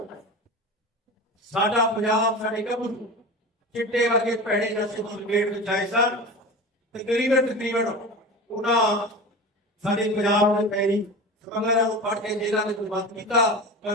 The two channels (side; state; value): both; normal; correlation 0.30